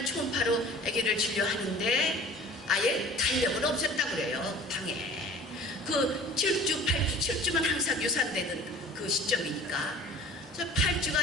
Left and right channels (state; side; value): normal; both; correlation 0.44